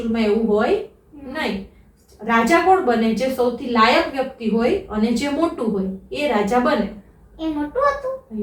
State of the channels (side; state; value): both; identical; correlation 1.00